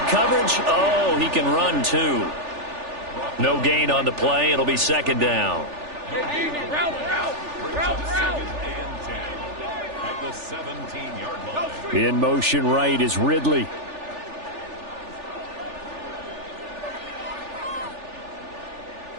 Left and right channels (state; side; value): late; left; 3.4 ms